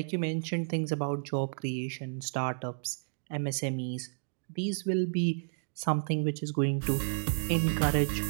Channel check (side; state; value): left; silent; digital silence